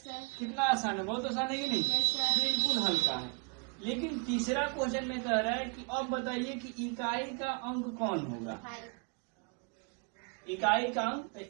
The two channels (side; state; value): left; quieter; 35.9 dB